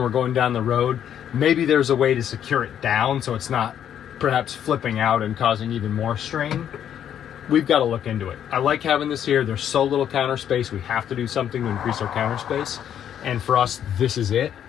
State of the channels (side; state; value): right; quieter; 9.7 dB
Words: we're going down the road. Maybe there's a way to secure it down so it's not perhaps flipping out and causing even more strain. We've got to look into it. I like having this here. There's so little counter space. We have to do something to increase our counter space. And for us, this is it.